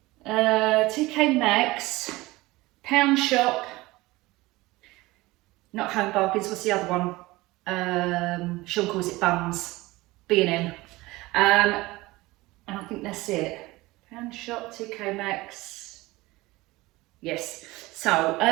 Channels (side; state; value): left; quieter; 20.4 dB